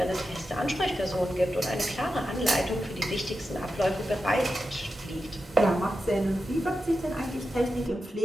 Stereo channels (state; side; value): normal; both; correlation 0.90